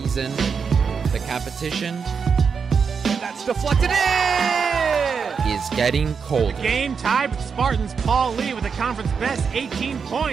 the competition that's deflected in is getting colder. The game tied with Spartans. Paul Lee with the conference best 18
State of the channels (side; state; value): left; quieter; 5.9 dB